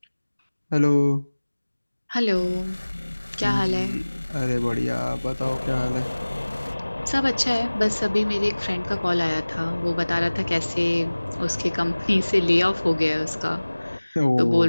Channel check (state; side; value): inverted; both; correlation -1.00